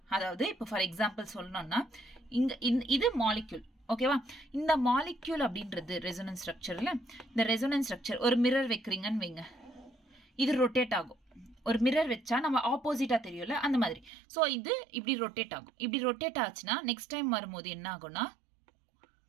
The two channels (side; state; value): left; drops out; at 14.1 s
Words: அதாவது இப்போ ஃபார் எக்ஸாம்பிள் சொல்லணும்னா இங்க இது மாலிக்யூல். ஓகேவா? இந்த மாலிக்யூல் அப்படின்றது ரெசோனன்ஸ் ஸ்ட்ரக்சர்ல, இந்த ரெசோனன்ஸ் ஸ்ட்ரக்சர் ஒரு மிரர் வைக்கிறீங்கன்னு வைங்க, இது ரொட்டேட் ஆகும். ஒரு மிரர் வச்சா நம்ம ஆப்போசிட்டா தெரியும்ல, அந்த மாதிரி. ஸோ இது இப்படி ரொட்டேட் ஆகும். இப்படி ரொட்டேட் ஆச்சுன்னா நெக்ஸ்ட் டைம் வரும்போது என்ன ஆகும்னா